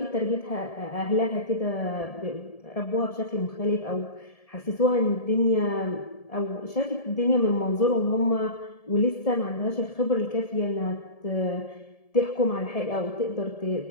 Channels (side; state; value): right; late; 1.7 ms